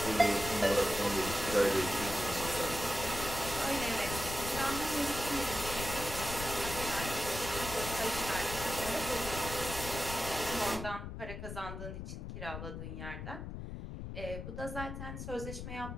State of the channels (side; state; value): left; noise; rumble, 7 dB below the sound